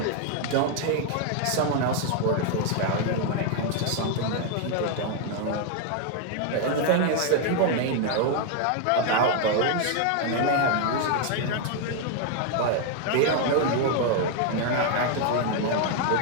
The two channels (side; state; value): both; different; correlation 0.00